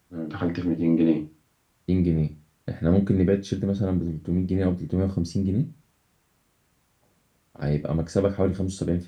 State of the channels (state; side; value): identical; both; correlation 1.00